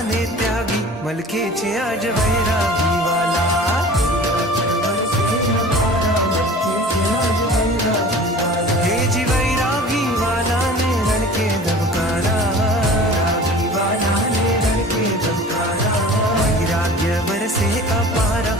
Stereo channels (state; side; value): normal; both; correlation 0.42